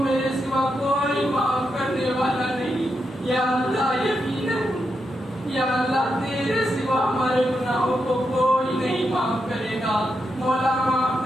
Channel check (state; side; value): normal; both; correlation 0.84